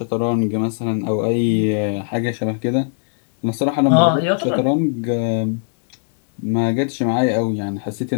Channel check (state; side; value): silent; right; digital silence